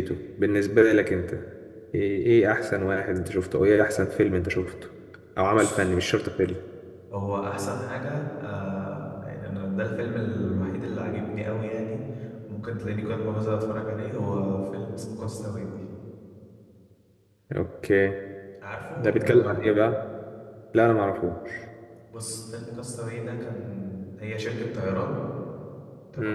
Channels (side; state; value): both; identical; correlation 1.00